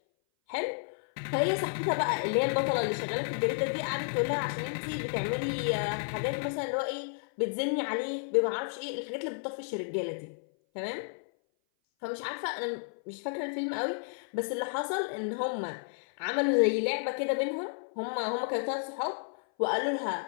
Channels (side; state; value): right; silent; 57 dB below the other